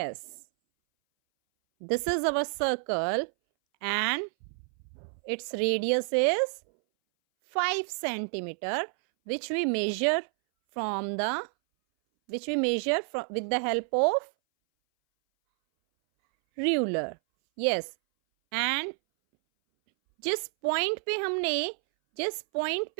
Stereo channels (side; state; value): left; silent; 58 dB below the other